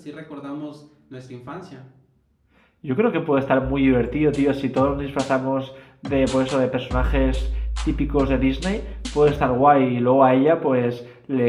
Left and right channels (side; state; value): both; identical; correlation 1.00